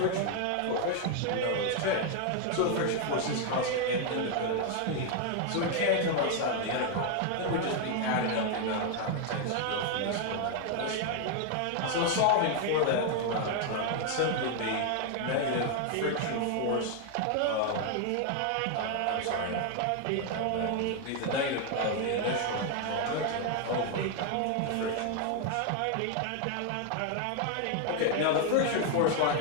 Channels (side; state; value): both; different; correlation 0.00